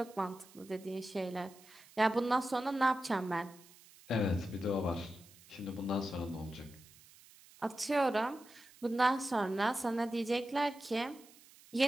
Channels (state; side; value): noise; right; hiss, 24 dB below the sound